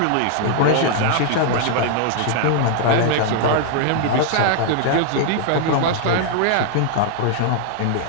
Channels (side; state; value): both; different; correlation 0.00